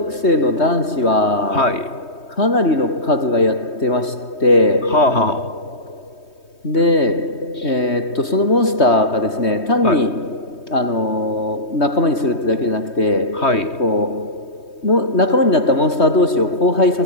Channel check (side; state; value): right; late; 3.2 ms